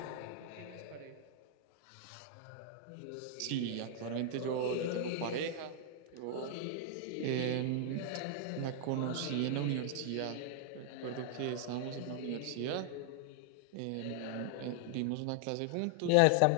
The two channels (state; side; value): different; both; correlation 0.00